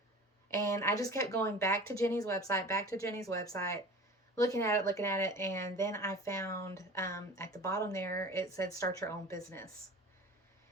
And I just kept going back to Jenny's website, looking at it. And then I found at the bottom there, it said start your own business.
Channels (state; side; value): normal; both; correlation 0.38